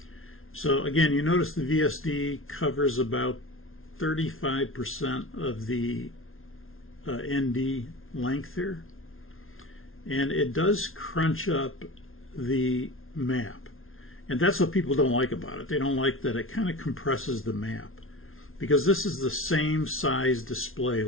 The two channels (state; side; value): late; right; 0.61 ms